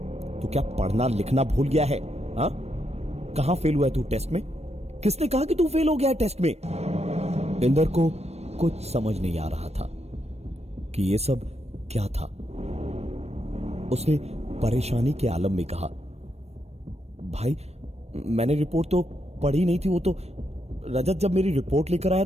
तू क्या पढ़ना लिखना भूल गया है? हाँ, कहां फेल हुआ है तू टेस्ट में? किसने कहा कि तू फेल हो गया है टेस्ट में? इंदर को कुछ समझ नहीं आ रहा था कि यह सब क्या था। उसने परेशानी के आलम में कहा, भाई मैंने रिपोर्ट तो पढ़ी नहीं थी। वो तो रजत जब मेरी रिपोर्ट लेकर आया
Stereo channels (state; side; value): late; left; 0.31 ms